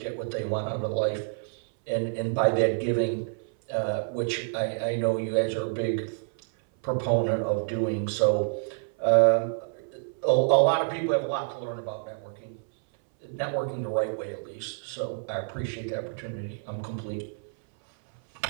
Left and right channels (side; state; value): left; silent; 59 dB below the other